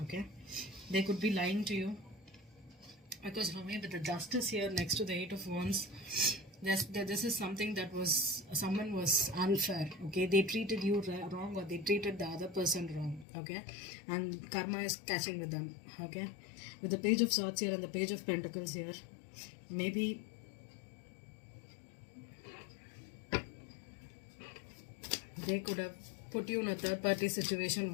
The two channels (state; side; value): drops out; right; at 13.2 s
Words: Okay, they could be lying to you, because for me with the Justice here next to the Eight of Wands, this is something that someone was unfair. Okay, they treated you wrong, or they treated the other person wrong. Okay, and karma is catching with them. Okay, with the Page of Swords here and the Page of Pentacles here, maybe they could have put you in a third party situation